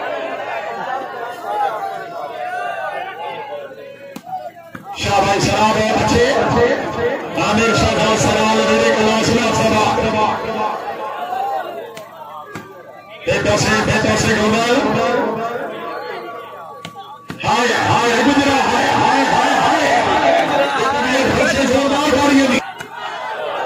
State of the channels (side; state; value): both; identical; correlation 1.00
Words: शाहबाज शराब है अच्छे आमिर शाहबाज सराल मेरे कलाशना सभा बेटा से गोपाल हाय हाय गुजरा हाय हाय हाय हाय से जोरदार गाड़ियों की